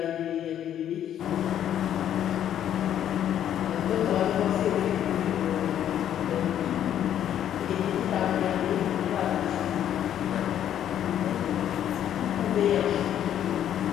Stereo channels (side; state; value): right; quieter; 10.5 dB